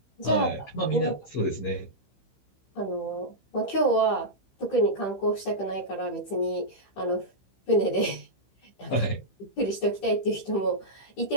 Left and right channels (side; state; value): right; late; 15 ms